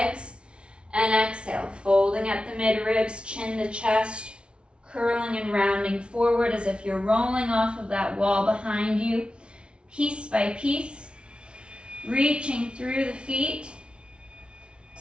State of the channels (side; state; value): left; late; 0.058 ms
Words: and exhale, folding at the mid-ribs, chin to chest, curling and rounding forward as if you're rolling off of that wall behind you, piece by piece, reaching through the feet,